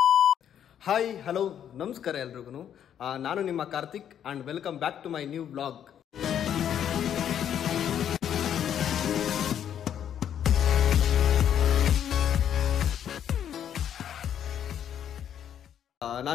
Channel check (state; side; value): quieter; right; 9.5 dB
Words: ಹಾಯ್ ಹಲೋ ನಮಸ್ಕಾರ ಎಲ್ರಿಗೂ ನಾನು ನಿಮ್ಮ Karthik and welcome back to my new blog